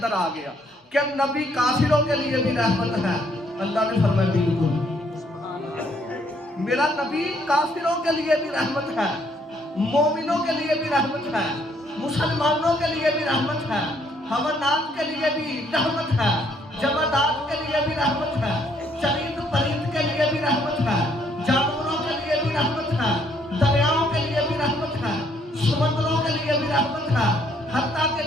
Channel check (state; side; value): normal; both; correlation 0.68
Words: آ گیا کہ نبی کافروں کے لیے بھی رحمت ہے. اللہ نے فرمایا بالکل میرا نبی کافروں کے لیے بھی رحمت ہے, مومنوں کے لیے بھی رحمت ہے, مسلمانوں کے لیے بھی رحمت ہے, حیوانات کے لیے بھی رحمت ہے, جمادات کے لیے بھی رحمت ہے, چرند پرند کے لیے بھی رحمت ہے, جانوروں کے لیے بھی رحمت ہے, دریاؤں کے لیے بھی رحمت ہے, سمندروں کے لیے بھی رحمت ہے, حتیٰ